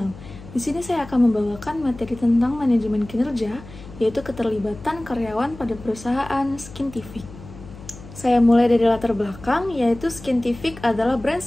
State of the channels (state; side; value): noise; left; hum, 17 dB below the sound